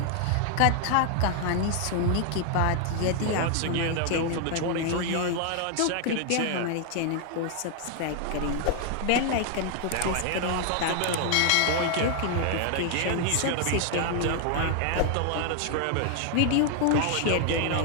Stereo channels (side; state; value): both; different; correlation 0.00